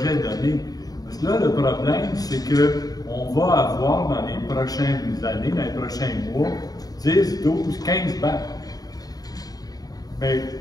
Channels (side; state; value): right; late; 0.18 ms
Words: donné. Parce que là, le problème, c'est qu'on va avoir dans les prochaines années, dans les prochains mois, 10, 12, 15 BAP. Mais